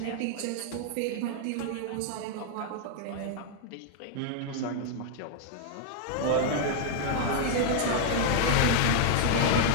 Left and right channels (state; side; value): different; both; correlation -0.01